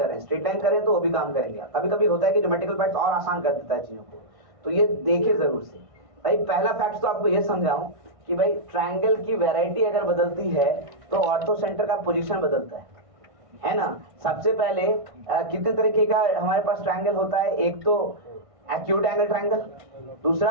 रहे हैं। स्ट्रेट लाइन करें तो वो भी काम करेंगे, कभी कभी होता है कि ज्योमेट्रिकल फैक्ट्स और आसान कर देता है चीजों को, तो ये देखे जरूर से। भाई पहला फैक्ट तो आपको ये समझाऊं कि भाई ट्रायंगल की वैरायटी अगर बदलती है तो ऑर्थो सेंटर का पोजीशन बदलता है ना। सबसे पहले कितने तरीके का हमारे पास ट्रायंगल होता है? एक तो एक्यूट एंगल ट्रायंगल, दूसरा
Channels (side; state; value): left; late; 1.6 ms